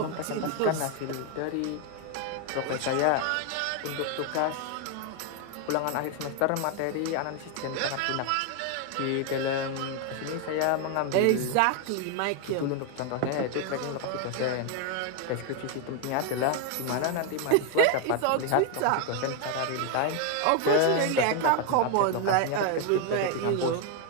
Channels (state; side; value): different; both; correlation 0.01